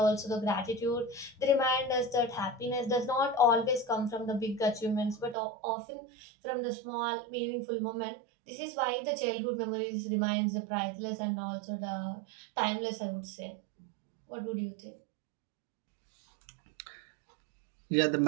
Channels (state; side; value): drops out; left; at 5.4 s